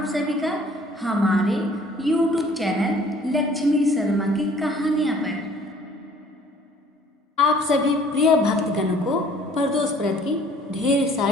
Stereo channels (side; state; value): both; normal; correlation 0.55